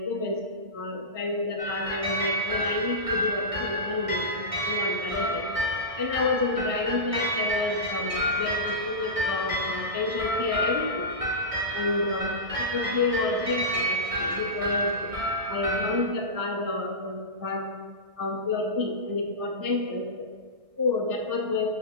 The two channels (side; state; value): left; late; 1.6 ms